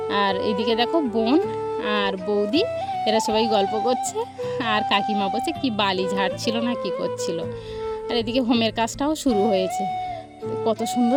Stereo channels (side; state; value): both; identical; correlation 1.00